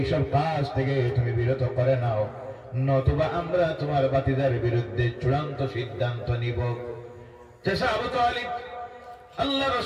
কাজ থেকে তুমি বিরত করে নাও, নতুবা আমরা তোমার ভাতিজার বিরুদ্ধে চূড়ান্ত সিদ্ধান্ত নিব। চাচা আবু তালিব আল্লাহ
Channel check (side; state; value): both; identical; correlation 1.00